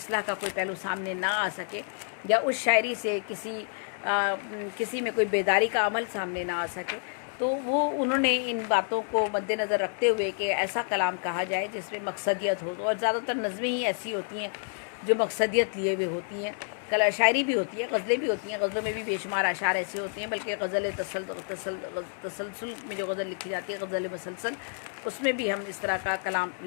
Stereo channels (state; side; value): silent; right; 59 dB below the other